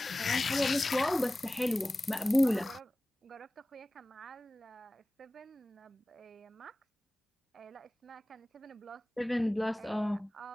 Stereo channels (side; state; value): both; normal; correlation 0.97